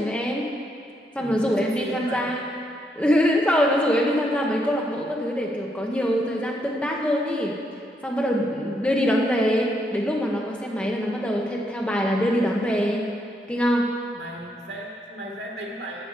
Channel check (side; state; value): both; normal; correlation 0.77